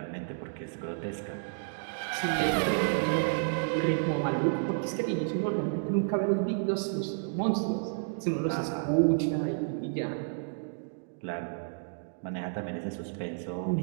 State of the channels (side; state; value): left; silent; digital silence